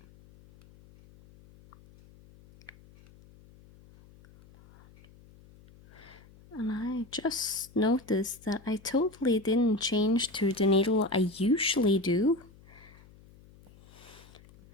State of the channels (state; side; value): noise; left; hum, 24 dB below the sound